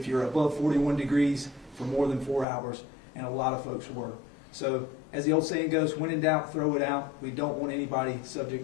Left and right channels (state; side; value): drops out; right; at 2.5 s